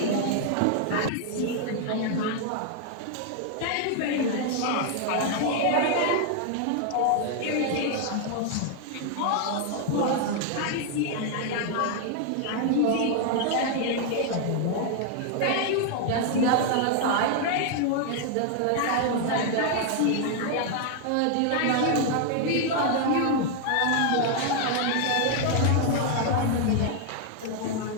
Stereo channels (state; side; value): different; both; correlation 0.00